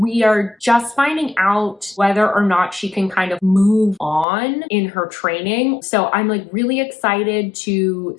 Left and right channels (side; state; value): right; drops out; at 4.2 s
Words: are just finding out whether or not she can kind of move on in her training. So I'm like really excited to